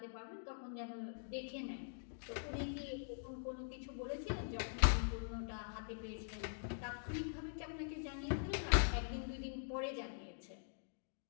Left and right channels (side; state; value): right; silent; digital silence